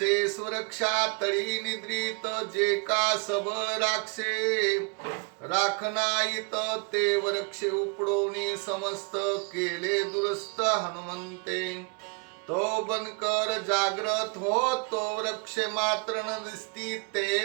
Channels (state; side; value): quieter; left; 33.2 dB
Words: सुरक्षा तळी निद्रित जे का सब राक्षे राखनाईत ते वृक्ष उपडोनी समस्त केले दुरस्त हनुमंते तो बनकर जागृत हो तो वृक्ष मात्र न दिसती